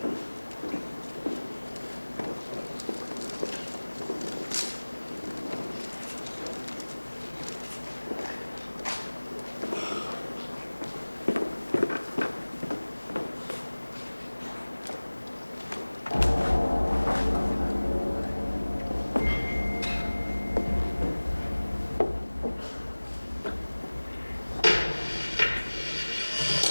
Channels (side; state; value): both; inverted; correlation -1.00